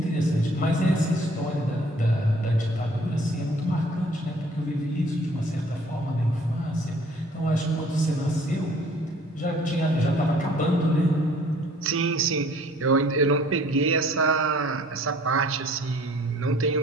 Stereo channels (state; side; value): normal; both; correlation 0.55